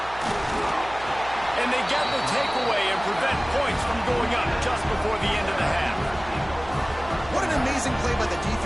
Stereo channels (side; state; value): right; noise; hum, 17 dB below the sound